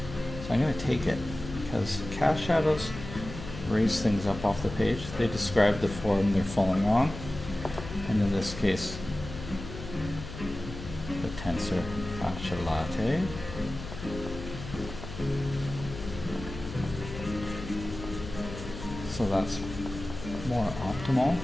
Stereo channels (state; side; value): noise; left; hum, 10 dB below the sound